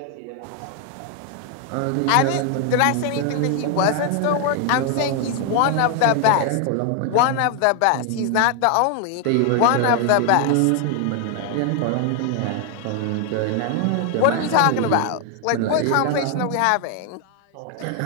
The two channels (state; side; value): different; both; correlation 0.00